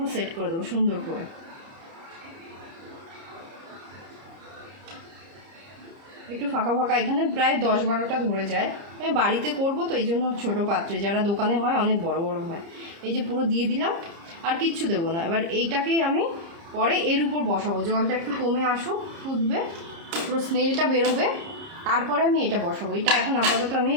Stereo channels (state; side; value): late; left; 30 ms